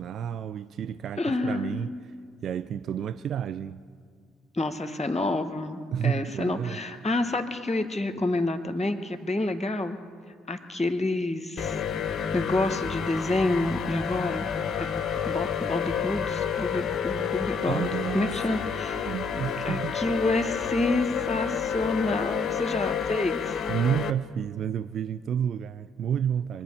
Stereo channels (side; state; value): both; normal; correlation 0.70